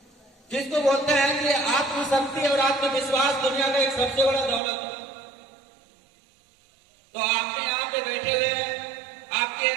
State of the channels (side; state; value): left; drops out; at 4.6 s